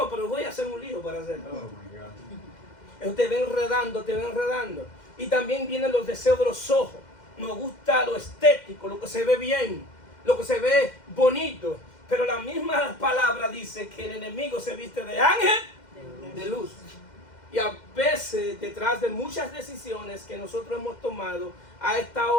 pero voy a hacer un lío para hacerlo. Oh my God. Te ven enredando, te ven enredando. Y también vienen los deseos de los ojos. Nos gusta lo estético, lo que se ve bien, lo que se ve bonito. Pero la misma palabra dice que el enemigo se viste de ángel de luz. Y a veces, detrás de muchas decisiones que nosotros hemos tomado, ha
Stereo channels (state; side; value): late; right; 2.1 ms